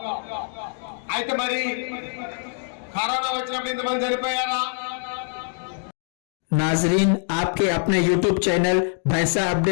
అయితే మరి కరోనా వచ్చినప్పుడు ఇంతమంది చనిపోయారా? नाजरीन, आपके अपने YouTube चैनल भैंसा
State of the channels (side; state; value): right; silent; 62 dB below the other